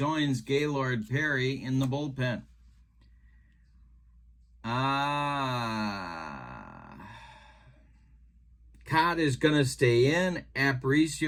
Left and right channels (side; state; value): both; identical; correlation 1.00